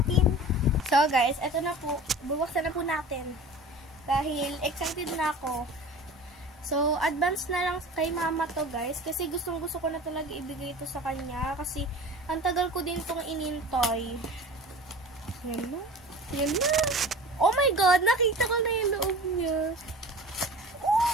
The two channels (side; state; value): both; normal; correlation 0.39